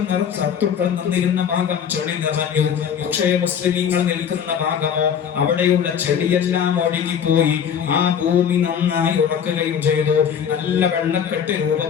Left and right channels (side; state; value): right; quieter; 8.0 dB